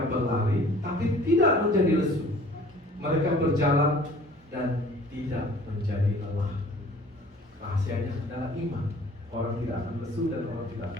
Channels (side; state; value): both; normal; correlation 0.50